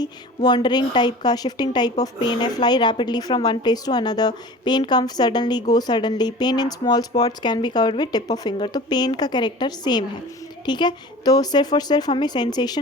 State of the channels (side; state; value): both; normal; correlation 0.39